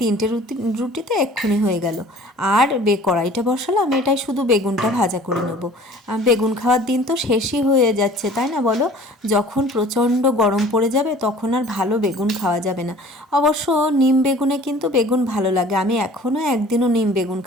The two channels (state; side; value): normal; both; correlation 0.48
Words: রুটিতে এক্ষুনি হয়ে গেল। আর কড়াইটা বসালাম, এটাই শুধু বেগুনটা ভাজা করে নেবো। বেগুন খাওয়ার দিন তো শেষই হয়ে যাচ্ছে, তাই না বলো? যখন প্রচণ্ড গরম পড়ে যাবে তখন আর ভালো বেগুন খাওয়া যাবে না। অবশ্য নিম বেগুনে কিন্তু বেগুন ভালো লাগে, আমি এখনও একদিনও নিম বেগুন